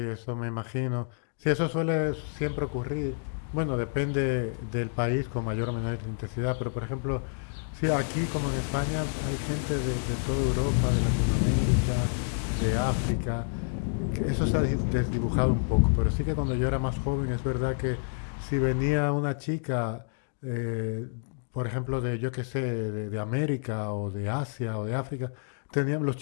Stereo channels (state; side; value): silent; right; digital silence